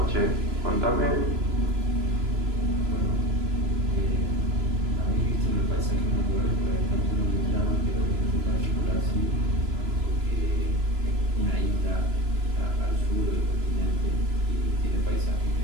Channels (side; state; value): left; late; 2.9 ms